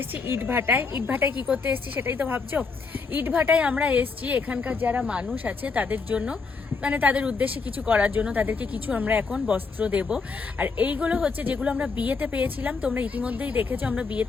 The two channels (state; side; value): quieter; right; 4.6 dB